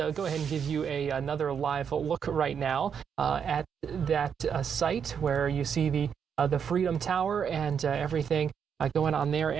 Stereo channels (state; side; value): quieter; left; 7.3 dB